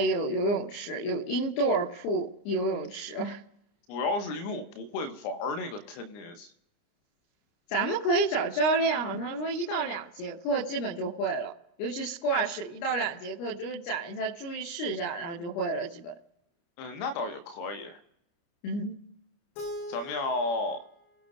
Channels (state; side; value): late; right; 29 ms